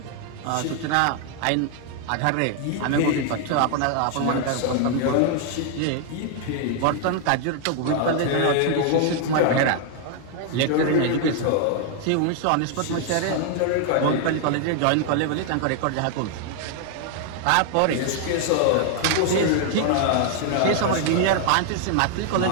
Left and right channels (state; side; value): different; both; correlation 0.00